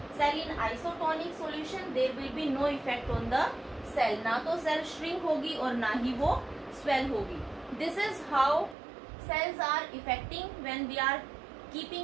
cell in isotonic solution there will be no effect on the cell. ना तो cell shrink होगी और ना ही वो स्वेल होगी। This is how cells are affecting when we are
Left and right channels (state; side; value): drops out; left; at 8.8 s